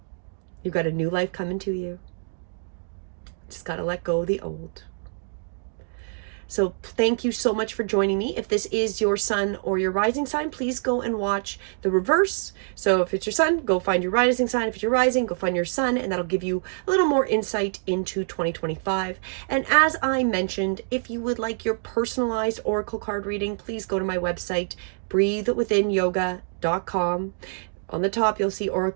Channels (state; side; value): silent; left; digital silence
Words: You've got a new life coming to you. Just got to let go of the old. So thank you so much for joining me. If this is your sun or your rising sign, please go and watch the reverse. So if it's your sun, go find your rising sign. If it's your rising, go find your sun, and that'll give you a little more insight into 2025. And as I mentioned, if you would like your personalized oracle card reading, please go to my website, breathewithinyoga.com. On the top, you'll see